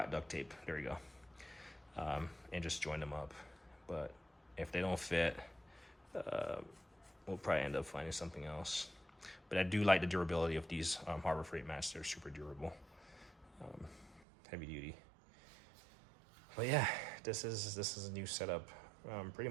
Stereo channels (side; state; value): left; drops out; at 14.2 s